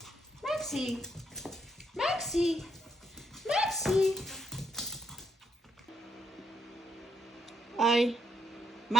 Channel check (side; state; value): both; normal; correlation 0.76